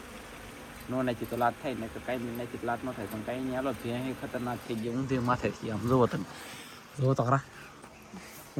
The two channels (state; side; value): identical; both; correlation 1.00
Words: નો નાખી તો લાટ થાય ને, તો કાંઈ નહીં નાખી તો લાટ ન થાય. પણ કાંઈ નહીં, હાલો ભેં ખતરનાક થઈ ગઈ. ઊંધે માથે થઈ આમ જોવો તમે, જોવો તો ખરા,